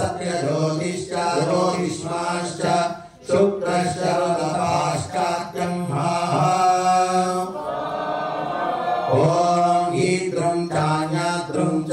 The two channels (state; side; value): identical; both; correlation 1.00